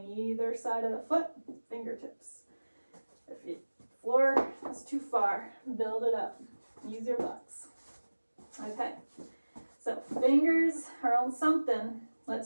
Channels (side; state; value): both; inverted; correlation -1.00